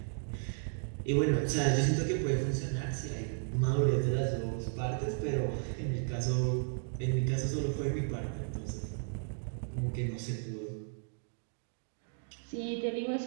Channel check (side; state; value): left; silent; digital silence